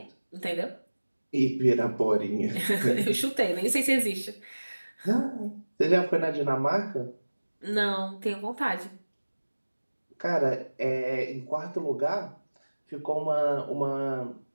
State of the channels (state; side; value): inverted; both; correlation -1.00